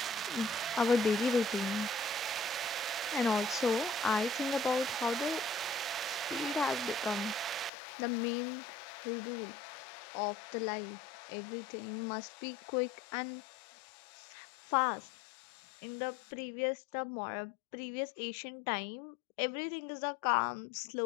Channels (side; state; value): right; drops out; at 7.7 s